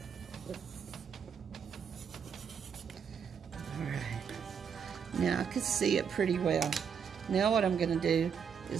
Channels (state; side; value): quieter; left; 7.0 dB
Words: Now I can see it pretty well. Now what I'm going to do